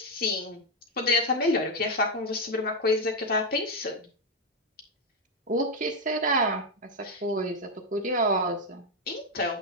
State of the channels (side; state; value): both; normal; correlation 0.04